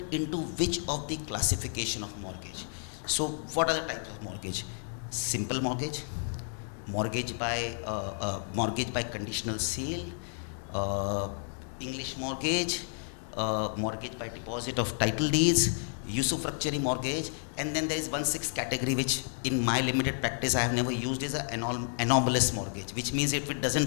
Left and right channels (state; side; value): silent; right; 57 dB below the other